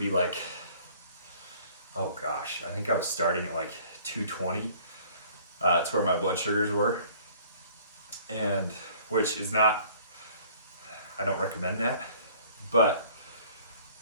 like, oh gosh, I think I was starting at like 220. It's where my blood sugars were, and which is not, I don't recommend that, but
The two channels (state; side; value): inverted; both; correlation -0.54